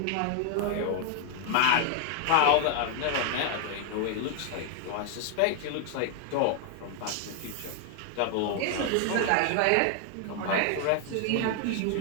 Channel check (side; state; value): both; different; correlation 0.00